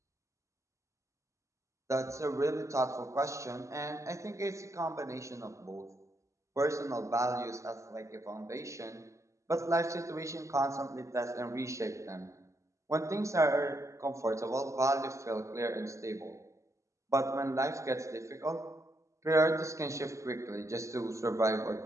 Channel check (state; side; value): late; left; 0.15 ms